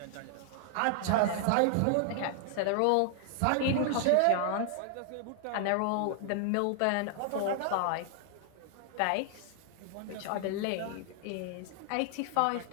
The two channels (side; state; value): both; different; correlation 0.00